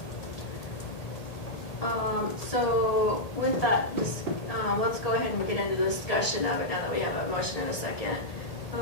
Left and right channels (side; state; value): right; late; 1.8 ms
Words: So with that, let's go ahead and get into the discussion of it now that we have a motion and a second.